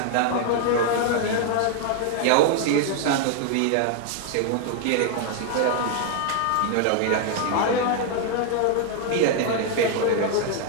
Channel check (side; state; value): both; different; correlation 0.00